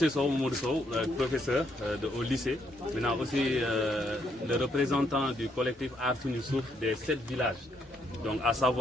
Sow, Mamadou Sow, professeur au lycée. Maintenant aussi le représentant du collectif Artoun Youssouf des 7 villages. Donc à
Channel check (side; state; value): both; normal; correlation 0.74